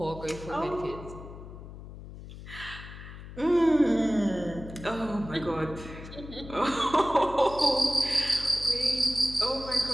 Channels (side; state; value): left; noise; hum, 14 dB below the sound